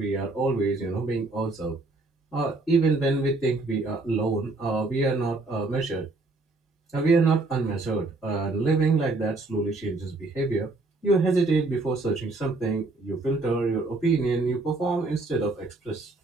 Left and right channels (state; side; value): quieter; left; 3.2 dB